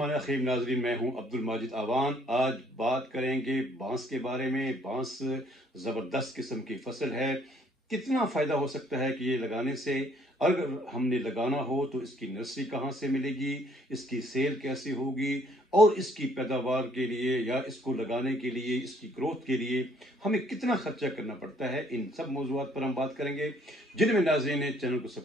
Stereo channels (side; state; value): both; normal; correlation 0.63